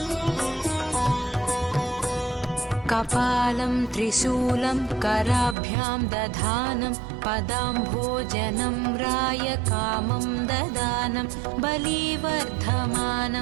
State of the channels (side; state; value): left; drops out; at 5.6 s